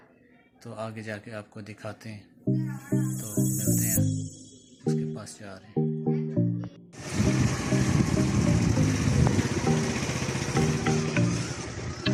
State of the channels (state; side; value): identical; both; correlation 1.00